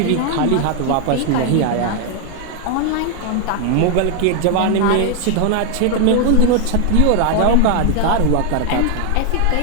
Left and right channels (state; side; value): different; both; correlation 0.00